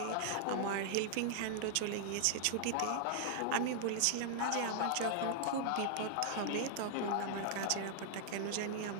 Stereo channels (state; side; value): different; both; correlation -0.01